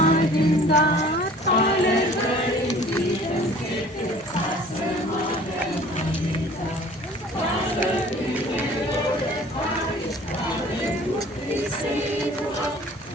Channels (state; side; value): normal; both; correlation 0.49